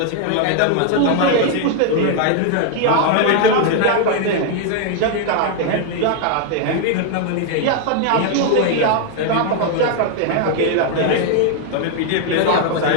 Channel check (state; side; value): different; both; correlation 0.00